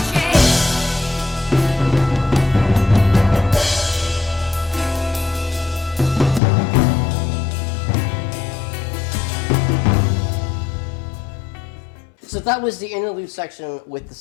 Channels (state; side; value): drops out; right; at 6.4 s